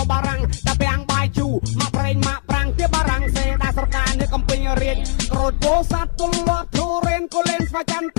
ំបារាំងតែពាំងបាយជូរមកប្រេងមកប្រាំងទៀតបារាំងសេដាស្រកានៅកំពេញរៀនក្រូចពោសាត់ទុលលាប់ធូរៀនក៏លេងស្វាយចន្ទ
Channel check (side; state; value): right; silent; 67 dB below the other